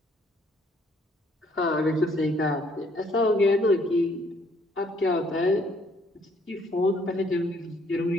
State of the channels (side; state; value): both; normal; correlation 0.65